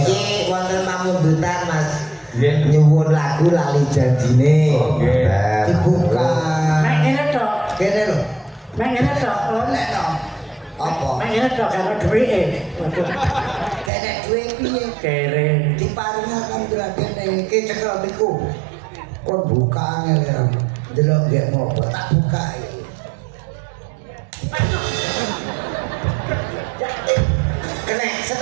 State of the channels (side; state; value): left; drops out; at 13.9 s